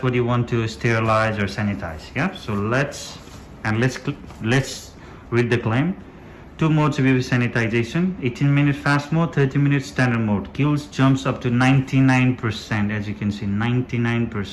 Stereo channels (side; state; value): both; identical; correlation 1.00